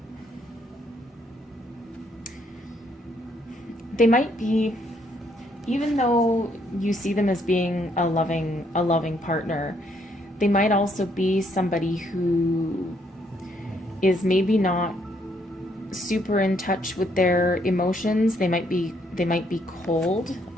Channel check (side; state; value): both; normal; correlation 0.71